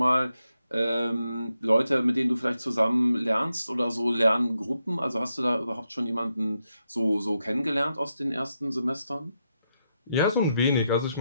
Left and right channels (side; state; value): both; inverted; correlation -0.84